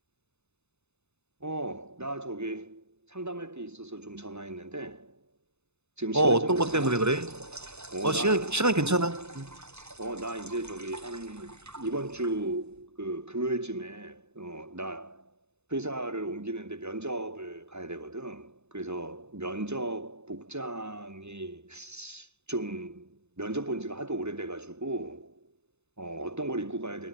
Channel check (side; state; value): left; late; 0.81 ms